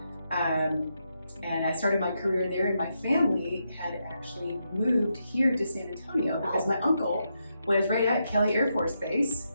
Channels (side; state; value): both; inverted; correlation -0.83